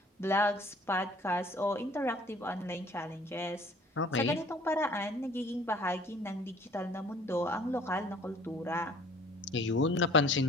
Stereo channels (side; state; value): both; normal; correlation 0.53